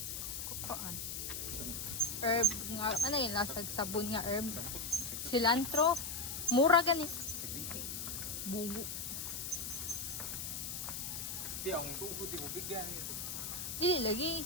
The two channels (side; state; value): left; noise; hiss, 4 dB below the sound